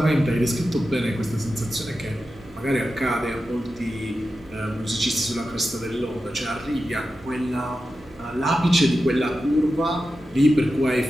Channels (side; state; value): both; normal; correlation 0.91